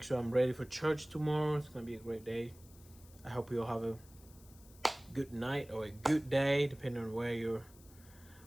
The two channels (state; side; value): noise; left; hiss, 24 dB below the sound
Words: sure I'm ready for church tomorrow. It's gonna be a great day. I hope you'll have a good night or a good day, depending on where you're